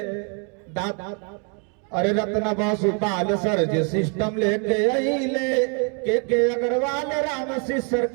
अरे रत्ना बसुपाल सर्जी सिस्टम लेके अइले, के अग्रवाल राम सिसर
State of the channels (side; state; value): left; quieter; 38.5 dB